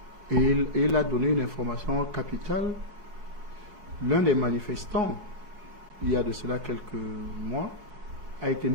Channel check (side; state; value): left; late; 5.6 ms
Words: il a donné une information capitale. L'un des manifestants, il y a de cela quelques mois, a été